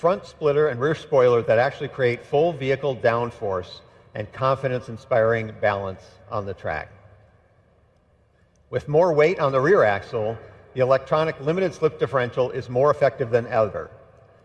splitter and rear spoiler that actually create full vehicle downforce and confidence-inspiring balance on the track. With more weight on the rear axle, the electronic limited slip differential is more effective than ever,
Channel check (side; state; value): both; identical; correlation 1.00